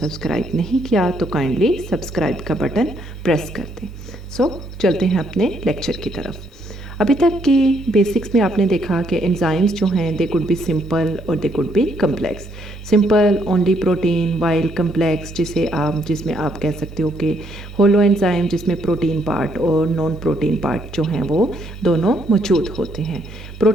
नहीं किया तो काइंडली सब्सक्राइब का बटन प्रेस कर दें। सो चलते हैं अपने लेक्चर की तरफ। अभी तक की बेसिक्स में आपने देखा कि एंजाइम्स जो हैं दे कुड बी सिंपल और they could be complex. Simple only protein, while complex जिसमें आप कह सकते हो कि होलो एंजाइम जिसमें प्रोटीन पार्ट और नॉन प्रोटीन पार्ट जो हैं वो दोनों मौजूद होते हैं।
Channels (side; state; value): both; normal; correlation 0.71